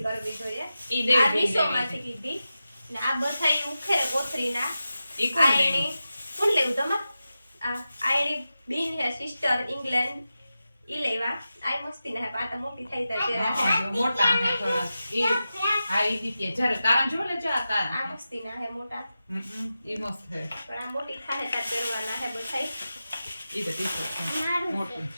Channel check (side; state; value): both; inverted; correlation -0.92